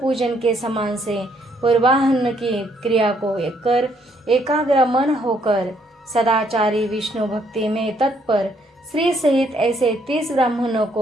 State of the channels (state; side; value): normal; both; correlation 0.69